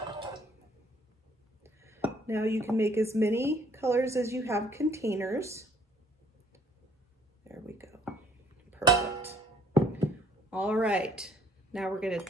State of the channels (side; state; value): both; normal; correlation 0.62